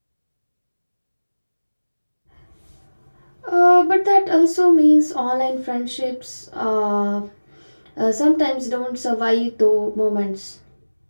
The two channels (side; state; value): both; inverted; correlation -1.00